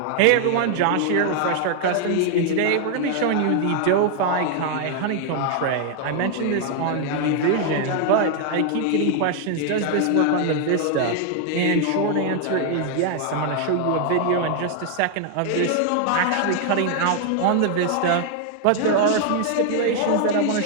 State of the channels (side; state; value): both; different; correlation 0.00